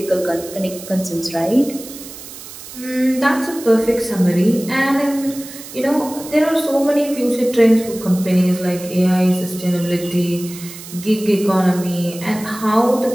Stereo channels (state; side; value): noise; right; hiss, 14 dB below the sound